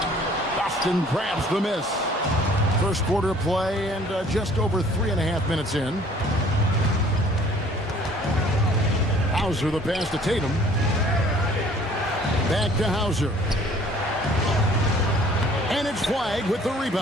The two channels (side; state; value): both; normal; correlation 0.55